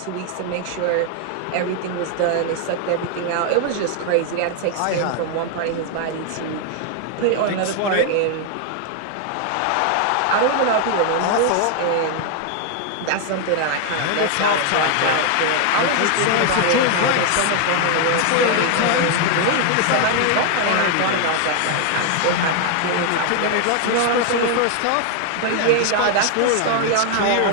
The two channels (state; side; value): different; both; correlation 0.00